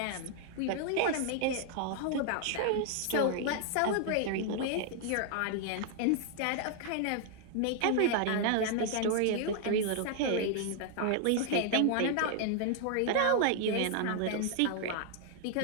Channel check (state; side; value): different; both; correlation 0.00